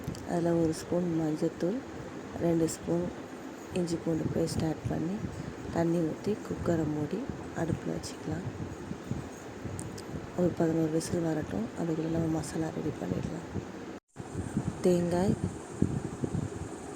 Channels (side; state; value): both; identical; correlation 1.00